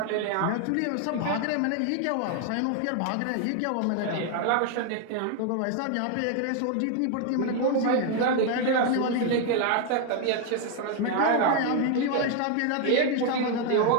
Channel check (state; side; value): different; both; correlation 0.00